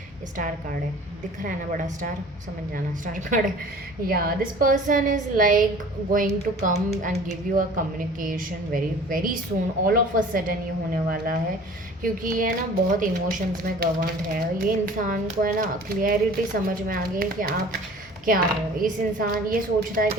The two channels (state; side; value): normal; both; correlation 0.46